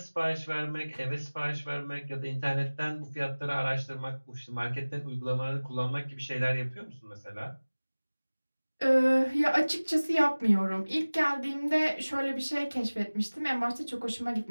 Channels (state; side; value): inverted; both; correlation -1.00